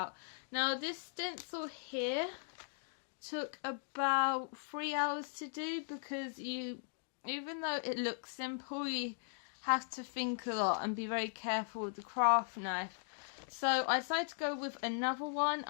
Now, this stencil here took about 3 hours to do, because even though it looks simple, you have to think a lot and be very careful with the craft knife. So I decided to go with another one.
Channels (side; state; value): right; silent; digital silence